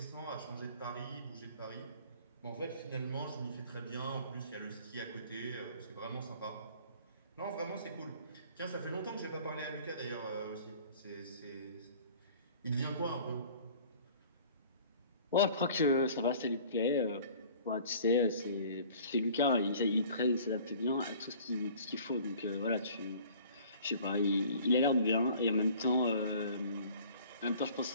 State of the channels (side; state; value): both; inverted; correlation -0.49